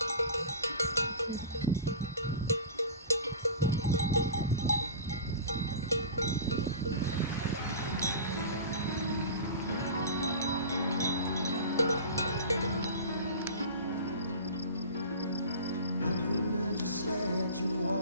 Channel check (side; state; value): both; inverted; correlation -0.35